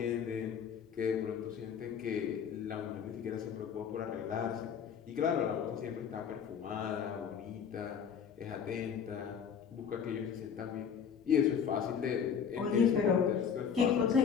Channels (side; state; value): right; quieter; 7.3 dB